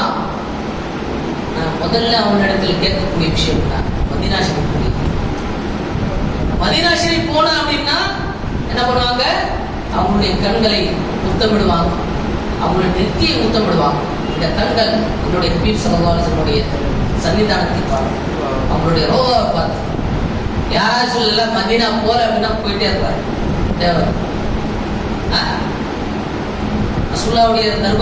நான் முதல்ல அவனிடத்தில் கேட்கக்கூடிய விஷயம் தான் மதீனா ஷரீஃப். மதீனா ஷரீஃப் போனா அப்படின்னா என்ன பண்ணுவாங்க? அவங்களுடைய கண்களை முத்தமிடுவாங்க, அவங்களுடைய நெத்தியை முத்தமிடுவாங்க. இந்த கண்கள் என்னுடைய ஹபீப் ஸல்லல்லாஹு அலைஹி வஸல்லம் சன்னிதானத்தை பார்த்து, அவங்களுடைய ரோதாவை பார்த்து. யாராச்சும் சொல்லல மதீனா போல அப்படின்னா போயிட்டே இருப்பாரு தேவை. ரசூலுல்லாஹ்வுடைய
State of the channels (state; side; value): identical; both; correlation 1.00